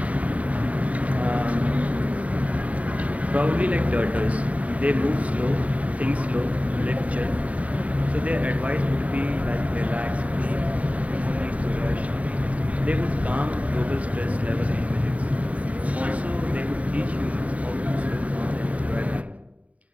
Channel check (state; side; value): late; left; 0.068 ms